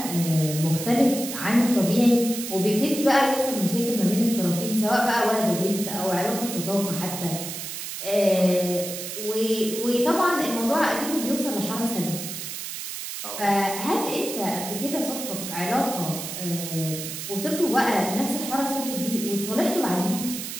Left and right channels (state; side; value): noise; right; hiss, 7 dB below the sound